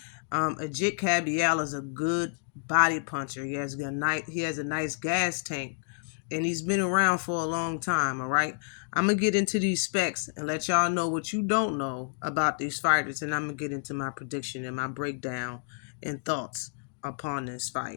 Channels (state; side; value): silent; right; 57 dB below the other